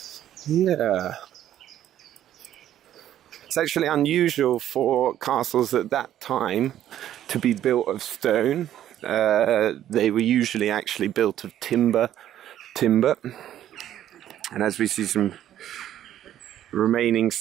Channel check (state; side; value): quieter; left; 11.6 dB